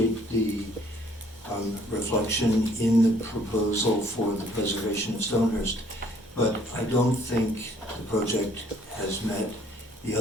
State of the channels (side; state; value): both; normal; correlation 0.61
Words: the reflection in the proposal for the preservation of Stonehurst, but I don't think the project has met the